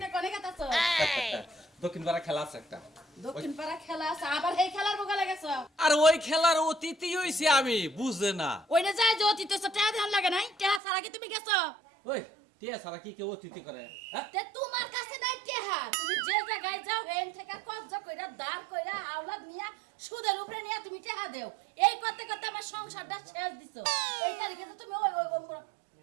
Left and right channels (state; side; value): drops out; left; at 10.8 s